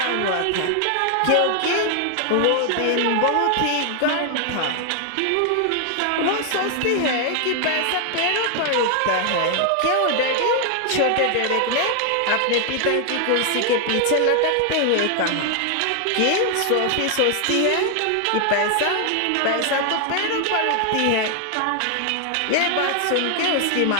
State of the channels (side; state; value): both; different; correlation 0.00